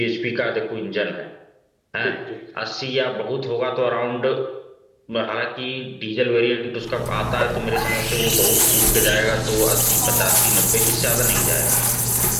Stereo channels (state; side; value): identical; both; correlation 1.00